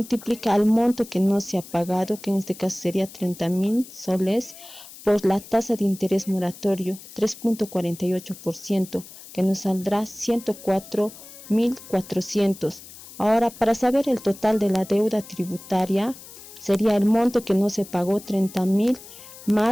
al monto que no se ha pagado, que en este caso sería 30.000 soles, por la tasa de interés moratorio 3.48%, que nos saldrá 104.400. Ahora, para saber el total de la deuda tributaria, sería el monto que no se pagó, 30.000,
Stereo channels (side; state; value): left; noise; hiss, 17 dB below the sound